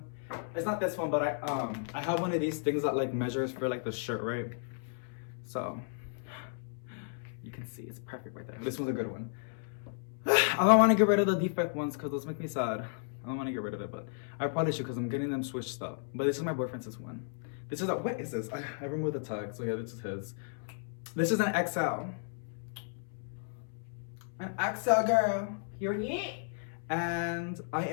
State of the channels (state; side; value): silent; right; 55 dB below the other